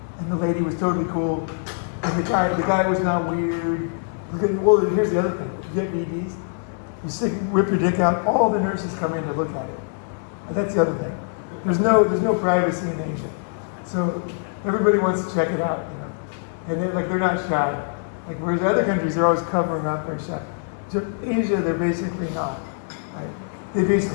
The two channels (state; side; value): silent; right; digital silence